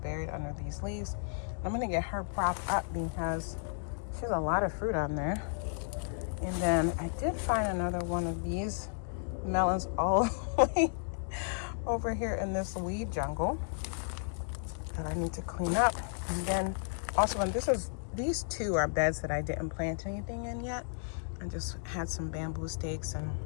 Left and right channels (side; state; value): right; silent; digital silence